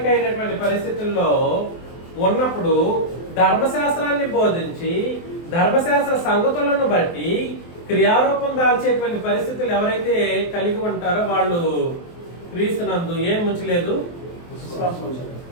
అయినటువంటి పరిస్థితుల్లో ఉన్నప్పుడు ధర్మశాస్త్రాన్ని బోధించి ధర్మశాస్త్ర సంగతులను బట్టి క్రియారూపం దాల్చేటువంటి పరిస్థితులు ఎవరైతే కలిగి ఉంటారో వాళ్ళు క్రీస్తునందు ఏం ఉంచలేదు? విశ్వాసం ఉంచాలి.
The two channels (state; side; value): late; right; 23 ms